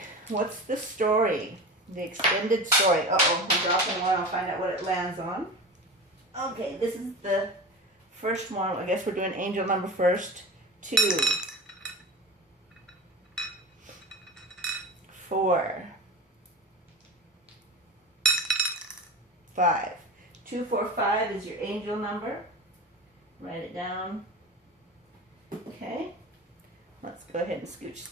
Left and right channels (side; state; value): both; normal; correlation 0.30